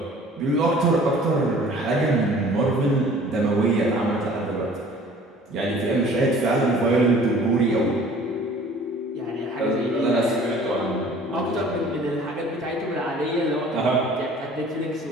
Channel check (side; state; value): both; normal; correlation 0.50